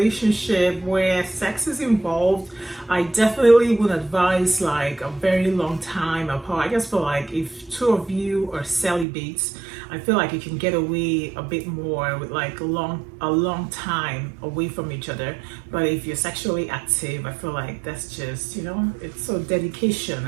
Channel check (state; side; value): drops out; left; at 9.1 s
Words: where sex is involved, I definitely would advise like a very long time apart. I guess for like if two of you are celibates, I feel like you can get away a bit more with like a long time away from each other. But if you're sexually active, I feel like that's just, it's so dedication.